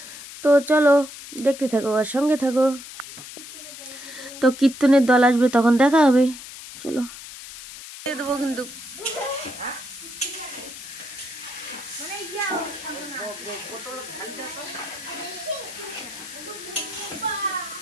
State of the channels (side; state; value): left; noise; hiss, 13 dB below the sound